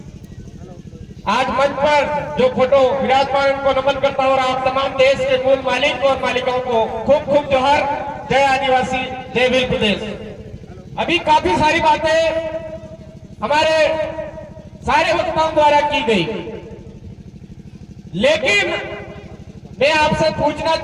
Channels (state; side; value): identical; both; correlation 1.00